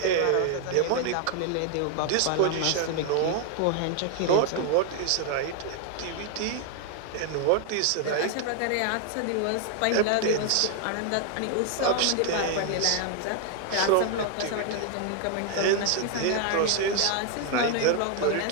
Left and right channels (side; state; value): both; different; correlation 0.00